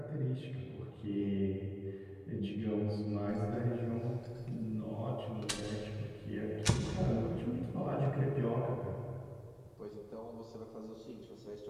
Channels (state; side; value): identical; both; correlation 1.00